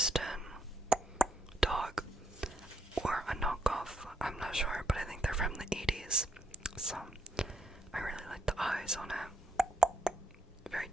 dog, or a knockoff. I'm not sure, but I think they're from the 80s. So I really like the eyes on it. Very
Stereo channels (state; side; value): normal; both; correlation 0.77